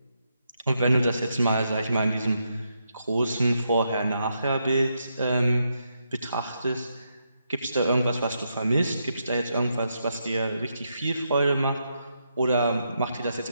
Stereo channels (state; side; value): inverted; both; correlation -0.81